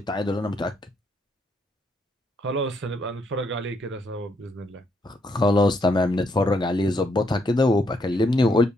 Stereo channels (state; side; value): normal; both; correlation 0.75